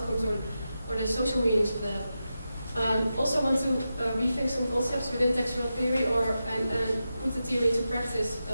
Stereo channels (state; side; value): inverted; both; correlation -0.90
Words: or the social meanings of that. Also want to rethink some concepts within text world theory and put the theory into practice,